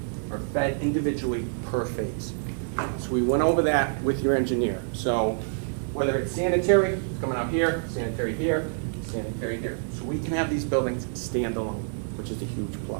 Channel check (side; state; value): left; silent; 59 dB below the other